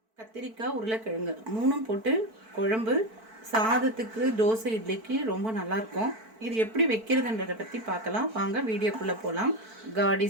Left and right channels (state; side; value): late; left; 4.5 ms